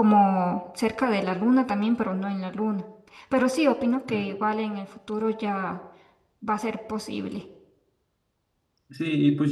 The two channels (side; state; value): both; identical; correlation 1.00